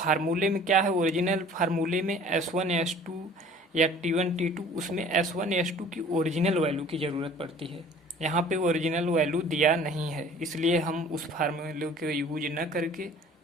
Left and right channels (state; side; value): normal; both; correlation 0.49